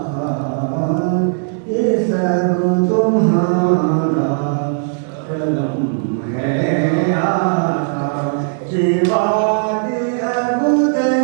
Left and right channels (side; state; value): left; silent; digital silence